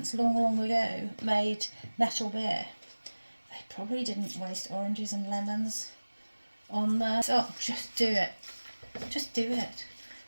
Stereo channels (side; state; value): both; inverted; correlation -1.00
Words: long ago made Nettle Beer, they probably didn't waste oranges and lemons on there. So just do it. Just do it.